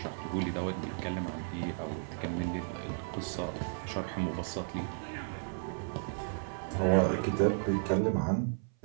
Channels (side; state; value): left; silent; 55 dB below the other